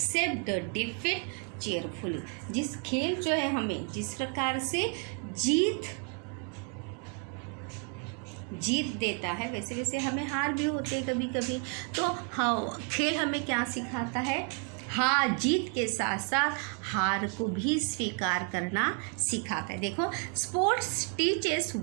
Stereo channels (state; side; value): quieter; left; 37.4 dB